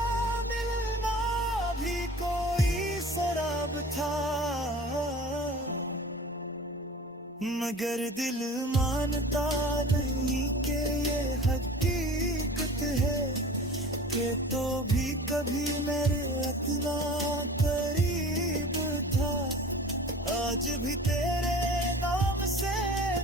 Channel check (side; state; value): both; normal; correlation 0.41